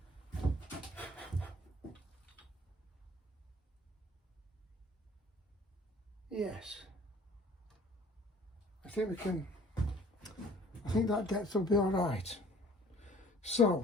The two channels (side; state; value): both; normal; correlation 0.53